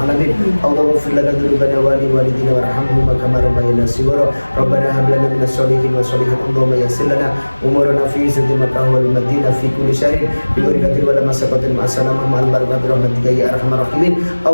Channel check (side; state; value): both; inverted; correlation -1.00